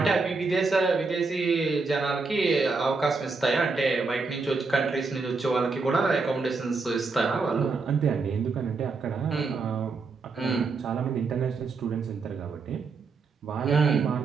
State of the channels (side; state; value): left; quieter; 4.2 dB